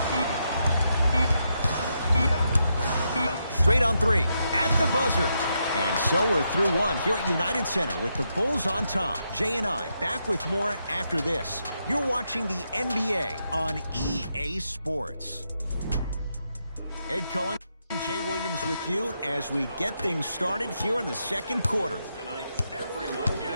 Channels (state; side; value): inverted; both; correlation -0.82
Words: Straight on three at the buzzer. And so we're through one here at United Center with the Bulls on top. Jay and I back with more after this. You're watching the NBA on EA Sports. Ed Cohen, Jay Williams with you as we get things started here in the second quarter. Tonight, everyone